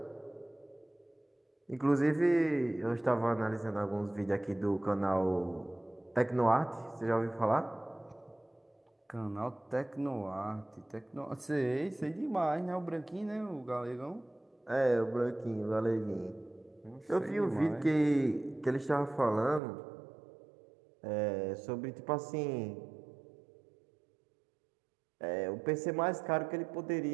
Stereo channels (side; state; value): left; drops out; at 19.6 s